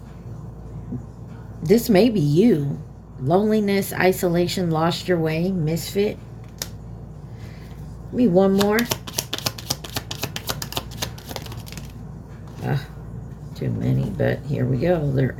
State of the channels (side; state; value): both; identical; correlation 1.00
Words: This may be you. Loneliness, isolation, lost your way, misfit. Give me one more. Too many, but here we go. They're